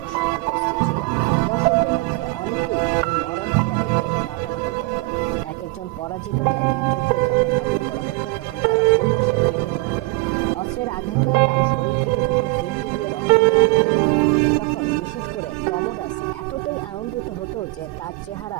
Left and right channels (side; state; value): left; quieter; 23.8 dB